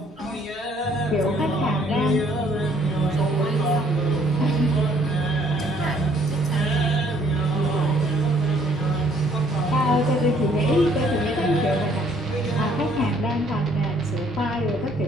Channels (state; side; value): normal; both; correlation 0.63